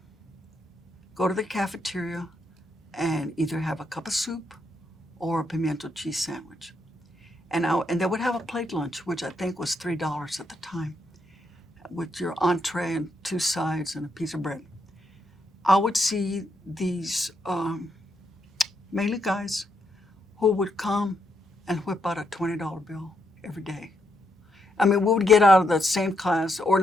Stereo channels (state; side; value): normal; both; correlation 0.78